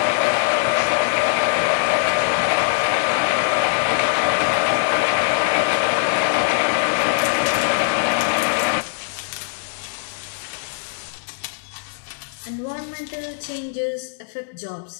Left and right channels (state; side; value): silent; right; digital silence